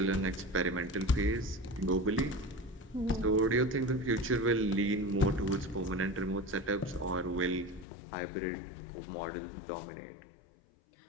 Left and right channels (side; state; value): right; drops out; at 7.9 s